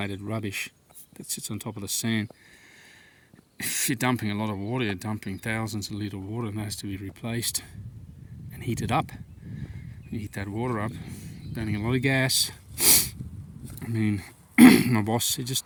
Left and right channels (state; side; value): identical; both; correlation 1.00